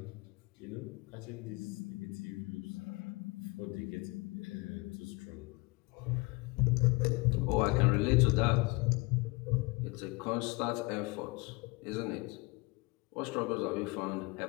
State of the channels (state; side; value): quieter; right; 25.8 dB